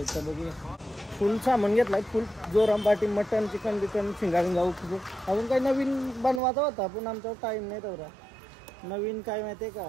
तर बघू। फुल सामान घेतलाय, फुल जोराम पार्टी, मटन चिकन बिकन शिंगा बिंगा उकरू। अजून काही नवीन बनवायचा होता पण आमचा टाइम नाही तेवढा। नवीन काय माहिती आहे का,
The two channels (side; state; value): left; drops out; at 6.4 s